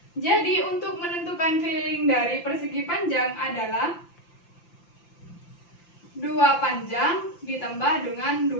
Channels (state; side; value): late; right; 5.8 ms